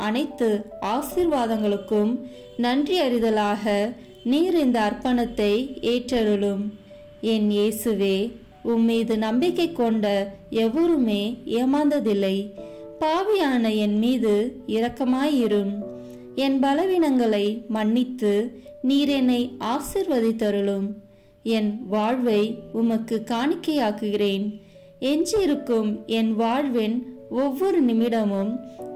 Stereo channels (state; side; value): identical; both; correlation 1.00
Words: அனைத்து ஆசீர்வாதங்களுக்கும் நன்றி அறிதலாக நீர் இந்த அர்ப்பணத்தை ஏற்றருளும். என் இயேசுவே, உம்மீது நம்பிக்கை கொண்ட எவருமே ஏமாந்ததில்லை. பாவியான என் மீது இரக்கமாயிரும். என் பலவீனங்களை மன்னித்து நீர் என்னை ஆசிர்வதித்தருளும். என் வாழ்வை உமக்கு காணிக்கையாக்குகிறேன். எஞ்சியிருக்கும் என் வாழ்வின் ஒவ்வொரு நிமிடமும்